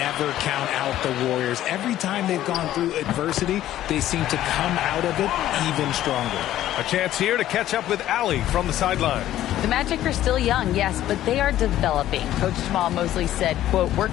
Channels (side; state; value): right; quieter; 13.2 dB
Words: count out the Warriors. Every time they've gone through adversity, they seem to come out of it even stronger. A chance here to catch up with Allie from the sideline. The Magic are still young, yes, but they are developing. Coach Jamal Mosley said, quote, "We're